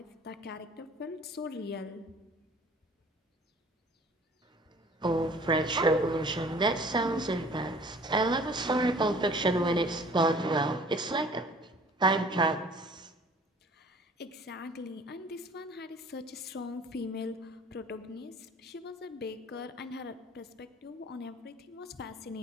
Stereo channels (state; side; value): normal; both; correlation 0.51